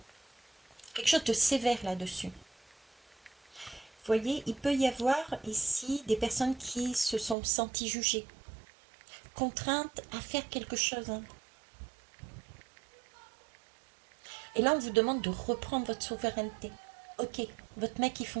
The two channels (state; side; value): drops out; left; at 7.4 s